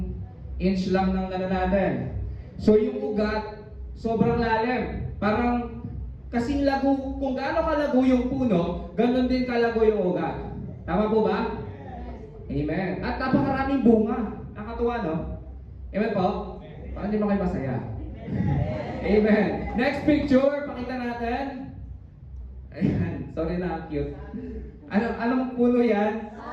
inch lang ng ano natin. So yung ugat, sobrang lalim. Parang kasing lago, kung gaano kalago yung puno, ganun din kalago yung ugat. Tama po ba? Amen. At napakaraming bunga. Nakatuwa, no? Amen po? Parang di ba kayo masaya? Amen. Next picture, pakita natin. Ayan, sorry na, cute. Anong puno yan?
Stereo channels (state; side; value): identical; both; correlation 1.00